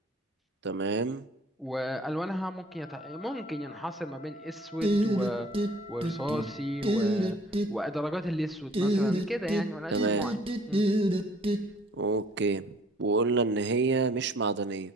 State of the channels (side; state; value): both; normal; correlation 0.55